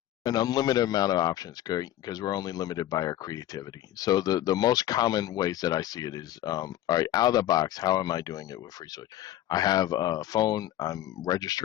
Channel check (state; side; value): quieter; right; 13.3 dB